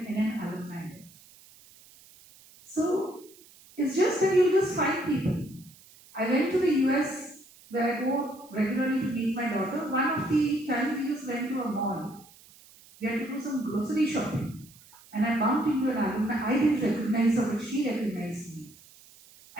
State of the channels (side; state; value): right; noise; hiss, 24 dB below the sound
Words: NN alumni there. So, it's just that you just find people. I went to the US where I go regularly to meet my daughter. One of the times we just went to a mall. We had to do some grocery shopping. And I bumped into an alumni. I didn't recognize her, but she recognized me.